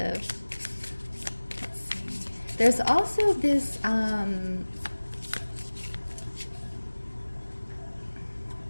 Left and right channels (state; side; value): inverted; both; correlation -1.00